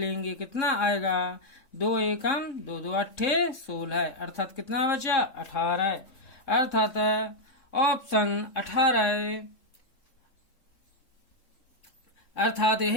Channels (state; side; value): late; right; 3.6 ms